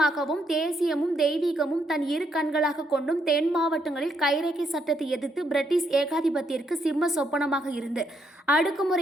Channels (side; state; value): both; normal; correlation 0.75